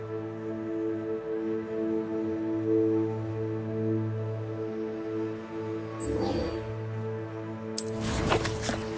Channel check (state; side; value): identical; both; correlation 1.00